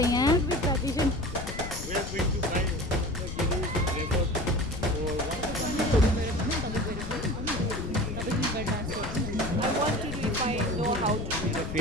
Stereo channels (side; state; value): left; noise; rumble, 7 dB below the sound